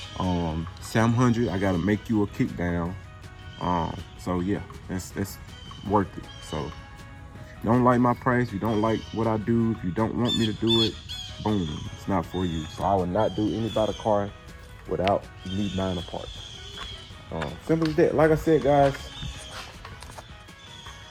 700, I gotta make you a kick down. So yeah, that's worth it. So if you don't like my price, you don't like what I do, if you don't want me to do it, boom, it's not for you. So I will not do anybody's car without me buying a part. Simple as that. Like I said, guys,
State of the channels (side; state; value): both; identical; correlation 1.00